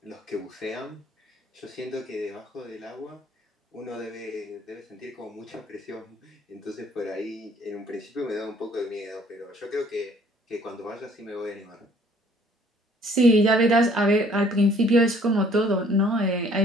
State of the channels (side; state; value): both; normal; correlation 0.58